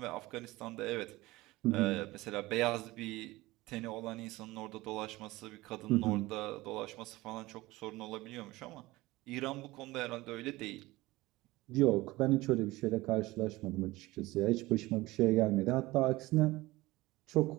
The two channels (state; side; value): quieter; left; 19.6 dB